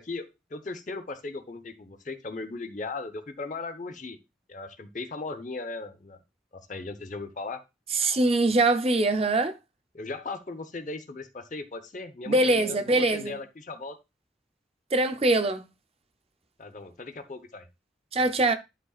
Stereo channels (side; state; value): both; normal; correlation 0.42